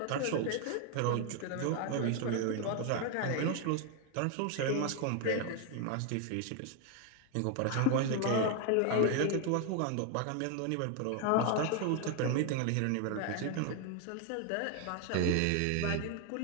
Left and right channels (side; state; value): both; different; correlation 0.01